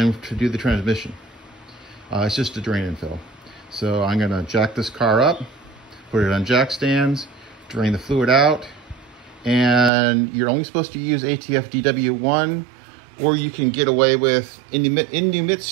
to do the transmission. It's just a drain and fill. So I'm gonna jack this car up, put it on jack stands, drain the fluid out, and you're only supposed to use ATF DW1, or you can get away with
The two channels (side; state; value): left; drops out; at 9.9 s